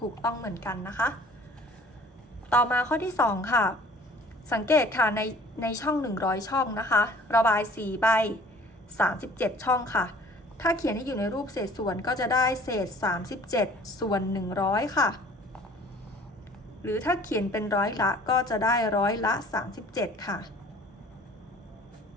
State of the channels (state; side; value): normal; both; correlation 0.51